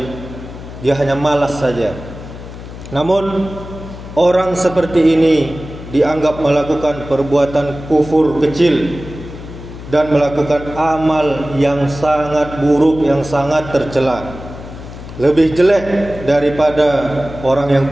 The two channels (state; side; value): noise; left; hum, 13 dB below the sound